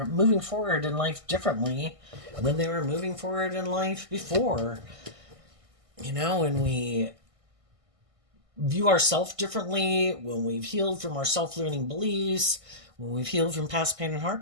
moving forward in life differently than they were moving forward in life before. You know, when we view ourselves differently, when we've healed from our self-limiting beliefs, when we've healed from past pain and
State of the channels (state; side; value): late; left; 1.6 ms